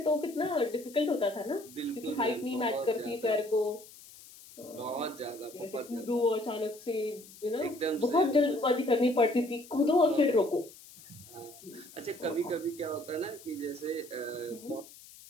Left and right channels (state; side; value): noise; left; hiss, 20 dB below the sound